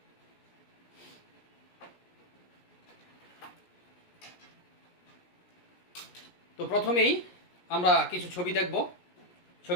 তো প্রথমেই আমরা কিছু ছবি দেখব।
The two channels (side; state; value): right; late; 17 ms